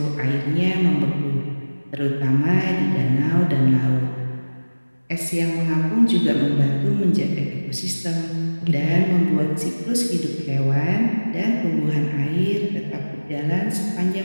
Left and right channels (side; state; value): both; inverted; correlation -1.00